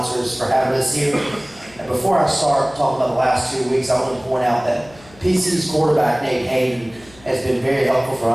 for having us here. And before I start talking about the last 2 weeks, I want to point out that PC's quarterback, Nate Hayden, has been very helpful for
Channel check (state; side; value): noise; left; hum, 24 dB below the sound